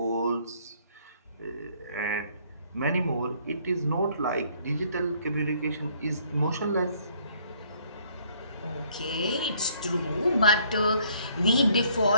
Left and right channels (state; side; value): inverted; both; correlation -0.63